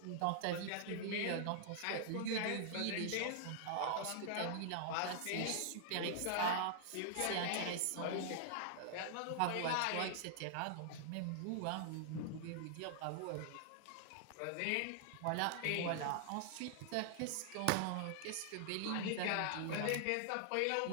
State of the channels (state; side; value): different; both; correlation -0.01